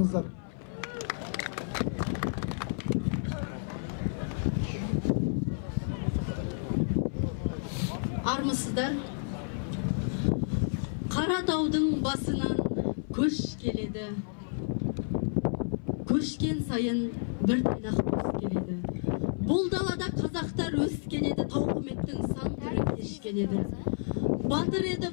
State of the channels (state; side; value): silent; right; 56 dB below the other